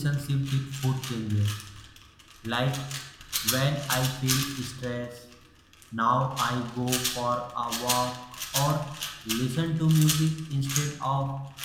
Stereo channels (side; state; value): both; identical; correlation 1.00